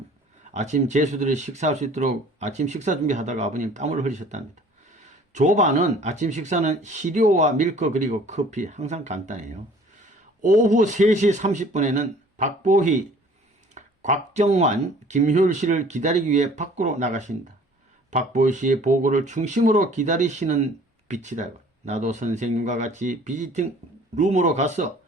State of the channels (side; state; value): both; normal; correlation 0.52